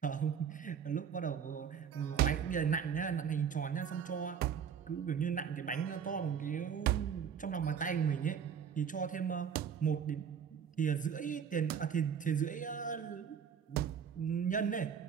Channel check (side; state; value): left; quieter; 7.5 dB